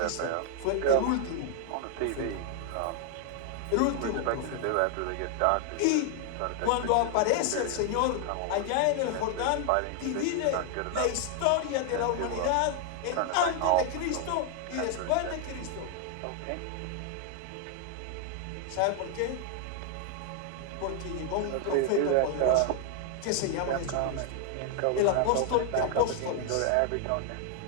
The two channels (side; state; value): both; different; correlation 0.00